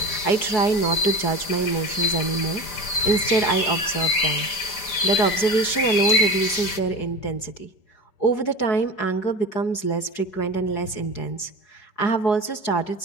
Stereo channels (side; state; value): right; late; 5.0 ms